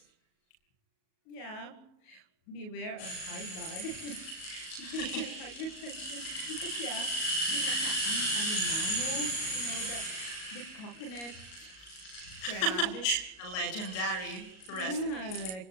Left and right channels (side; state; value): right; late; 38 ms